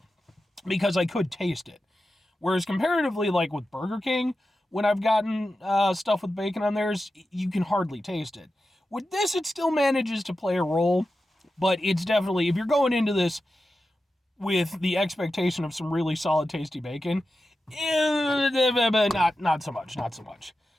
because I could taste it. Whereas comparatively, with Burger King, when I've gotten stuff with bacon on theirs, you can hardly taste it. With this, it still manages to play a role, but it's definitely, if you're going into this with the expectation of some really solid, tasty bacon, not so much.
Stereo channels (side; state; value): both; normal; correlation 0.92